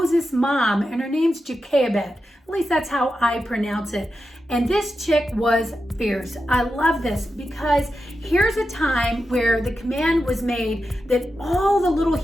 mom, and her name's Jochebed. At least that's how I pronounce it. And this chick was fierce. I love this because here's a time where the command was made that all the little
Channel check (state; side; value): normal; both; correlation 0.90